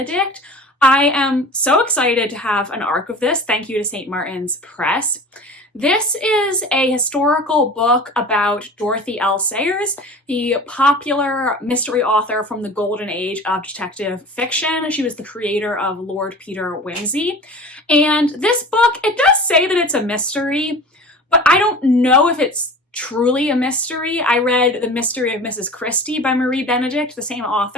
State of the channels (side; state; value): both; normal; correlation 0.38